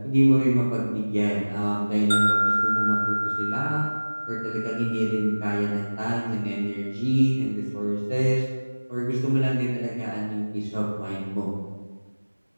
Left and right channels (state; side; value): inverted; both; correlation -1.00